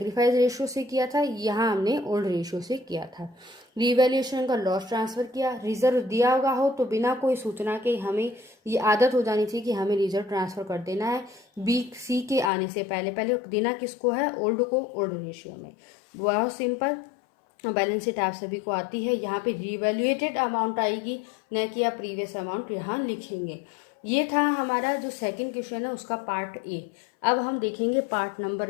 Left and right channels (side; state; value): right; drops out; at 12.5 s